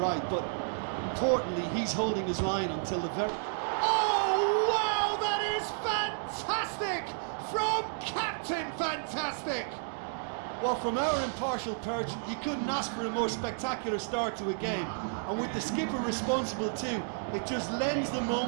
But importantly, he's holding his line until the very... Oh, wow, that is fantastic! From Captain Fantastic! Well, from our impartial perch, you couldn't ask for a more spectacular start to a game. And with the skipper responsible too, it just lends the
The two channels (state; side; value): silent; left; digital silence